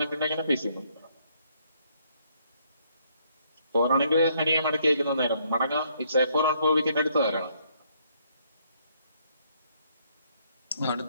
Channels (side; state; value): both; inverted; correlation -0.69